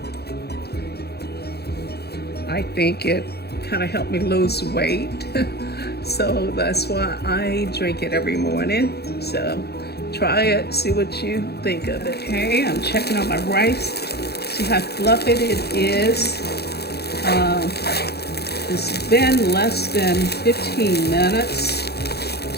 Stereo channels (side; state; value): right; late; 0.47 ms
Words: I think it kind of helped me lose weight. So that's why I drink it every morning. So try it, see what you think of it. Okay, I'm checking on my rice. See how fluffy it is. It's been less than 15 minutes.